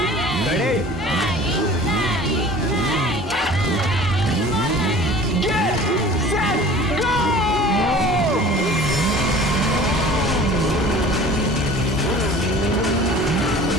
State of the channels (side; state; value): both; normal; correlation 0.44